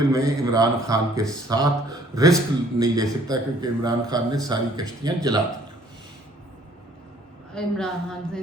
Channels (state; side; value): normal; both; correlation 0.59